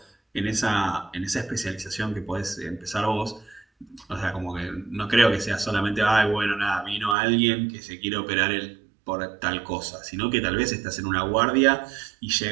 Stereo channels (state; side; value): drops out; left; at 7.2 s